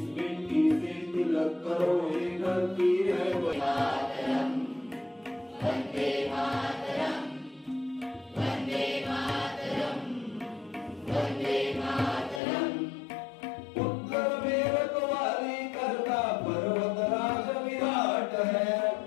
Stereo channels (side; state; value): right; drops out; at 12.4 s